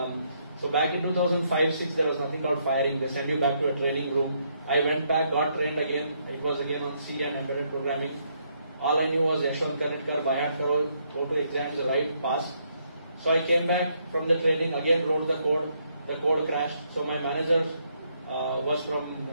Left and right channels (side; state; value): both; inverted; correlation -0.74